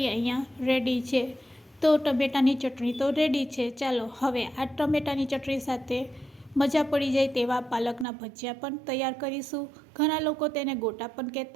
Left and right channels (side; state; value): left; drops out; at 8.1 s